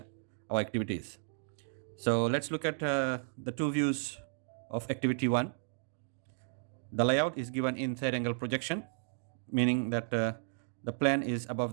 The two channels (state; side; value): silent; left; digital silence